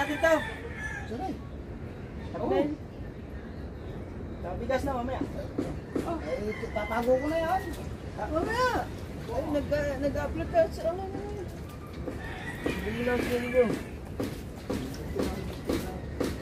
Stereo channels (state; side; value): identical; both; correlation 1.00